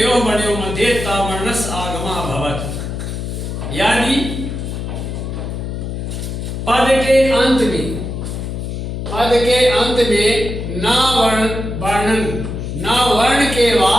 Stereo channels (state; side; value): noise; left; hum, 5 dB below the sound